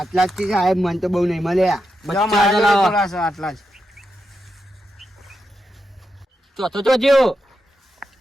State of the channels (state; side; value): normal; both; correlation 0.86